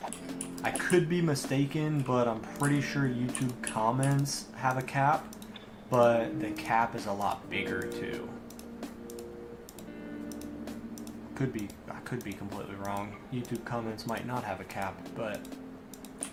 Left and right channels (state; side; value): identical; both; correlation 1.00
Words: I could be mistaken, but I'm pretty sure YouTube comments have a cap, but the cap is a lot bigger too. I could be completely wrong. YouTube comments might not have a cap, but